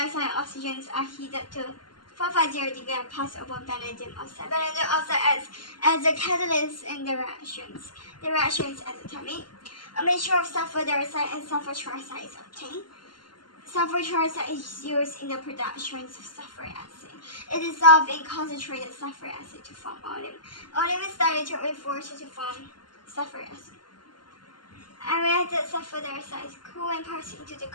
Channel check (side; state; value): right; late; 0.71 ms